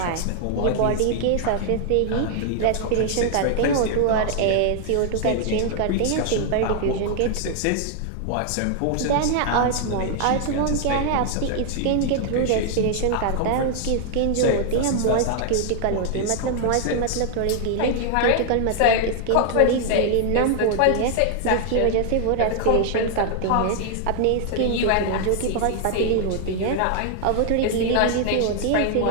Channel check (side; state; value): both; different; correlation 0.00